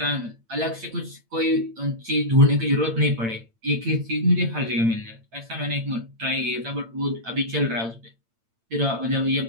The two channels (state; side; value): late; left; 8.9 ms